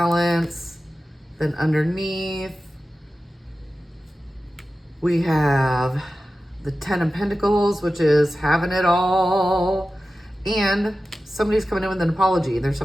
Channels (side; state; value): both; normal; correlation 0.94